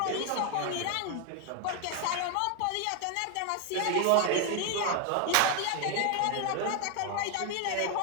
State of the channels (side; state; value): both; different; correlation 0.01